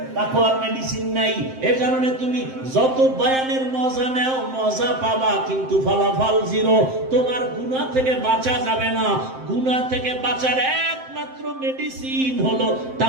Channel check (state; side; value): late; left; 7.6 ms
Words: তাকওয়ার মেডিসিন নাই। এর কারণে তুমি যত বয়ানের মজা নাও, মজা পাবা, কিন্তু ফলাফল জিরো। তোমার গুনাহ থেকে বাঁচা যাবে না। গুনাহ থেকে বাঁচার একমাত্র মেডিসিন হলো